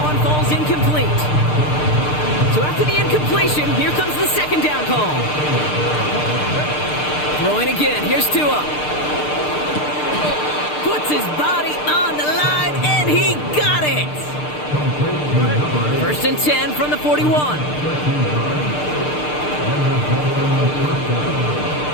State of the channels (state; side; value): late; right; 6.7 ms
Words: falls incomplete. So after the incompletion, here comes the second down call. Throwing again, here's Tua. Puts his body on the line, and he got it! 1st and 10 from the 41.